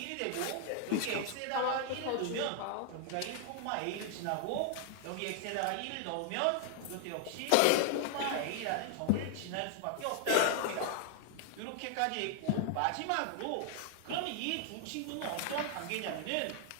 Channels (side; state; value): both; different; correlation 0.00